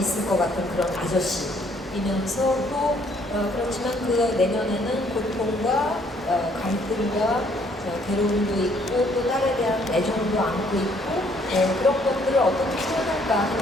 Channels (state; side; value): normal; both; correlation 0.65